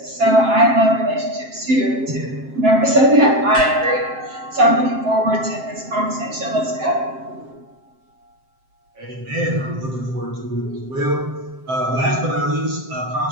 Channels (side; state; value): left; late; 7.6 ms